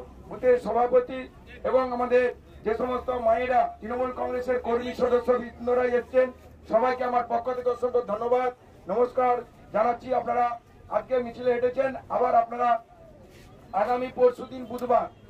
বুথের সভাপতি এবং আমাদের যে সমস্ত মায়েরা তৃণমূল কংগ্রেসের কর্মী সদস্য বৃন্দরা এসেছেন সবাইকে আমার পক্ষ থেকে অসংখ্য ধন্যবাদ নমস্কার জানাচ্ছি। আপনারা আজকে মিছিলে হেঁটেছেন, আবার আপনারা আগামী পরশুদিন বুধবার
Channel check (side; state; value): both; identical; correlation 1.00